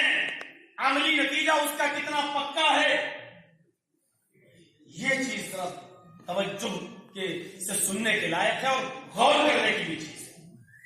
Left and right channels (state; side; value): identical; both; correlation 1.00